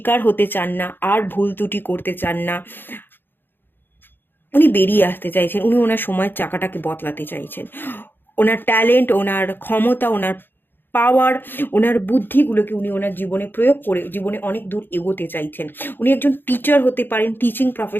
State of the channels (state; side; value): late; right; 0.098 ms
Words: হতে চান না, আর ভুল ত্রুটি করতে চান না, উনি বেরিয়ে আসতে চাইছেন, উনি ওনার সময়ের চাকাটাকে বদলাতে চাইছেন। ওনার ট্যালেন্ট, ওনার ক্ষমতা, ওনার পাওয়ার, ওনার বুদ্ধিগুলোকে উনি ওনার জীবনে প্রয়োগ করে জীবনে অনেক দূর এগোতে চাইছেন। উনি একজন টিচার হতে পারেন, টিচিং